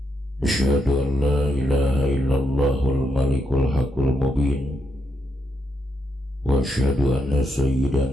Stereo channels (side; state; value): both; normal; correlation 0.80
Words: Asyhadu an la ilaha illallahul malikul haqqul mubin wa asyhadu anna